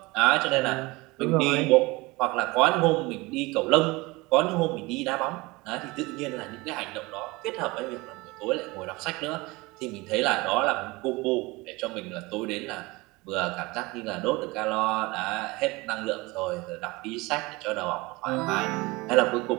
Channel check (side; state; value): left; quieter; 23.2 dB